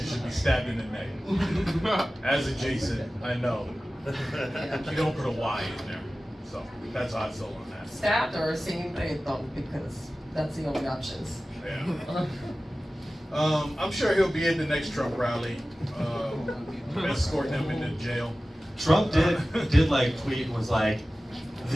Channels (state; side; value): normal; both; correlation 0.96